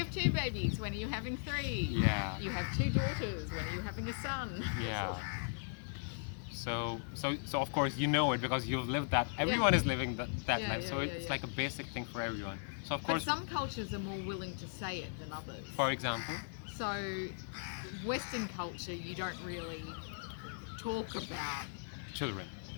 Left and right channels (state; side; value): silent; right; digital silence